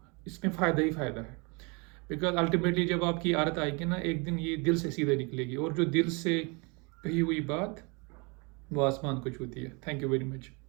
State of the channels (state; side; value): quieter; left; 30.5 dB